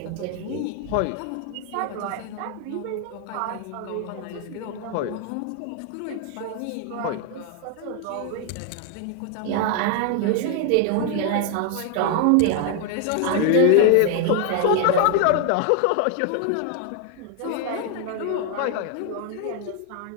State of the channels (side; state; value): both; different; correlation 0.00